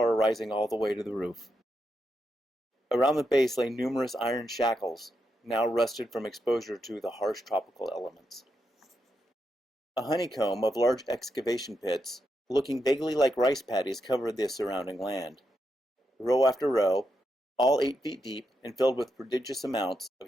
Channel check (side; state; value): both; normal; correlation 0.84